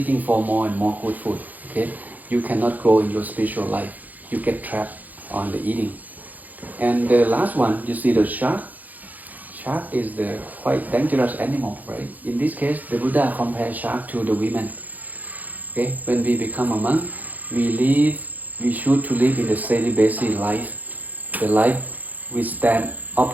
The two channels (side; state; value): left; late; 0.081 ms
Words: for more and more good food, okay, you cannot grow in your spiritual life. You get trapped on the eating. And the last one, you see the shark. Shark is the quite dangerous animal, right? In this case, the Buddha compares shark to the women. Okay, when we become a monk, we should to live in the celibacy life. The life we stand